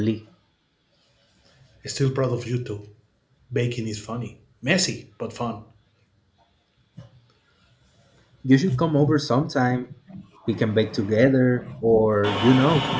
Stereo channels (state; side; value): identical; both; correlation 1.00